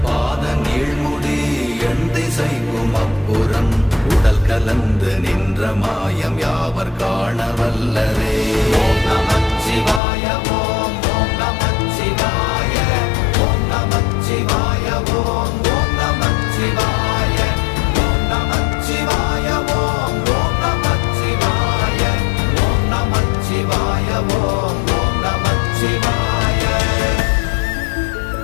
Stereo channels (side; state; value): right; drops out; at 10.0 s